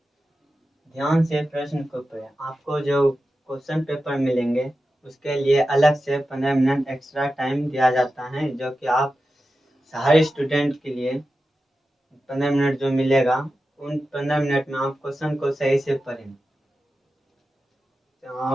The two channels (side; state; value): both; normal; correlation 0.92